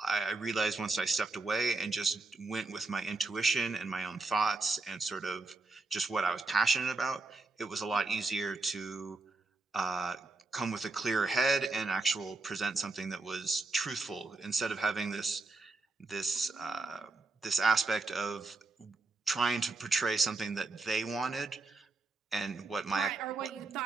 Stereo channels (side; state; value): left; quieter; 3.6 dB